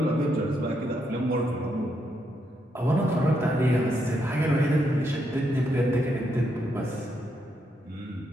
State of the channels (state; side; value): normal; both; correlation 0.79